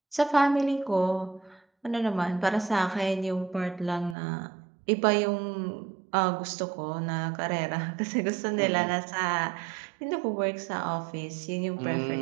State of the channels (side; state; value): left; drops out; at 4.2 s